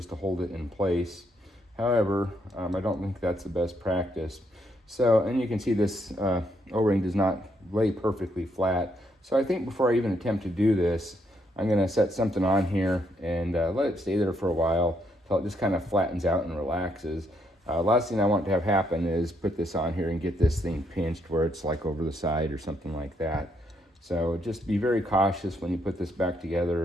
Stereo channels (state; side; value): normal; both; correlation 0.75